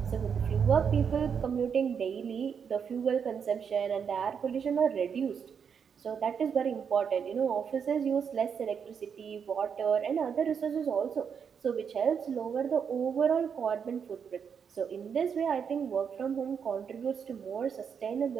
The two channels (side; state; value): left; quieter; 7.0 dB